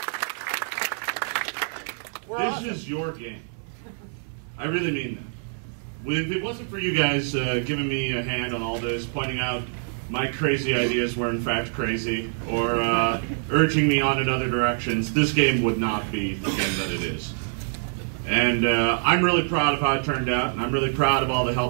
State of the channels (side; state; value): left; silent; 61 dB below the other